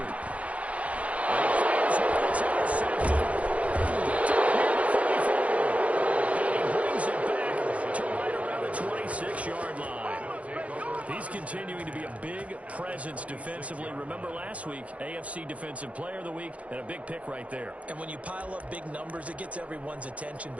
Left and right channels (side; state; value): left; late; 0.065 ms